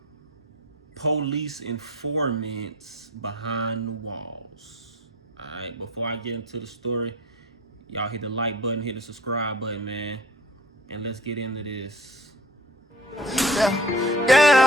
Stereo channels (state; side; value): normal; both; correlation 0.45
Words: police informants behind the walls. Alright, before I get into the story, y'all hit the like button, hit the subscribe button, man. And let's get into this.